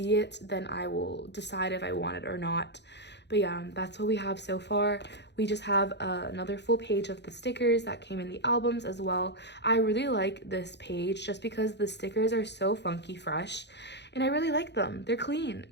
it, then I will decide if I want it or not. But yeah, that's what we have so far. We just have another full page of the stickers that came in the albums as well. I really like this page just because the stickers are so funky fresh. And I really like them. They're clean,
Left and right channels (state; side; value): late; right; 0.50 ms